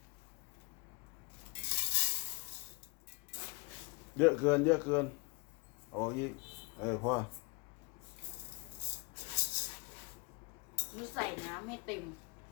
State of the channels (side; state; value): right; quieter; 29.0 dB